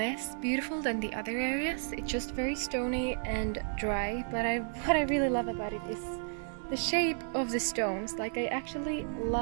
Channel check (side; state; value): left; silent; digital silence